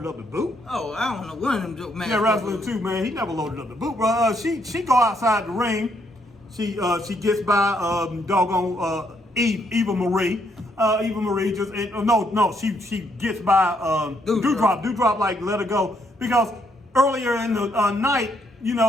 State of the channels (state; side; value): normal; both; correlation 0.73